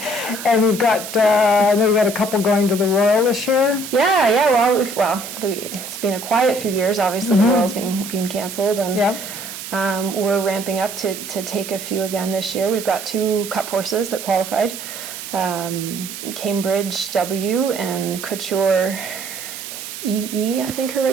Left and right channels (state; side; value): noise; right; hiss, 9 dB below the sound